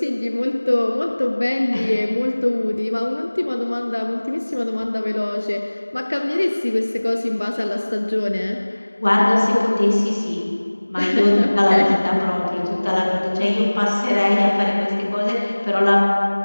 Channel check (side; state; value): both; inverted; correlation -1.00